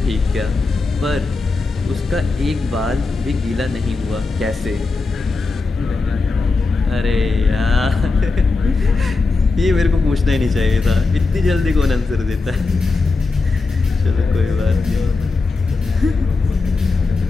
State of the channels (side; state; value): right; quieter; 3.9 dB